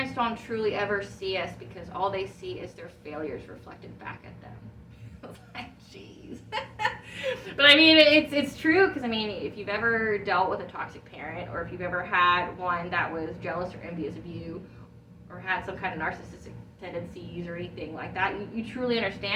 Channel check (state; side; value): identical; both; correlation 1.00